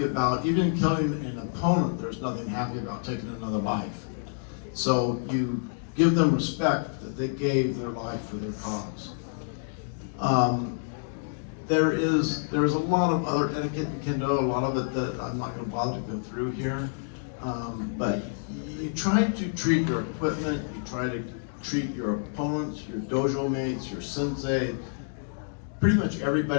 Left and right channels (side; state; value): right; silent; digital silence